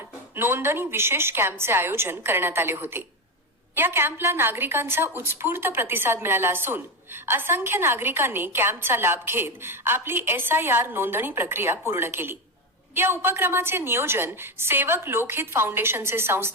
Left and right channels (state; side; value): normal; both; correlation 0.13